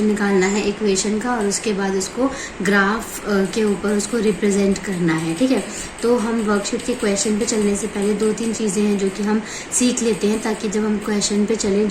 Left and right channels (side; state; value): both; identical; correlation 1.00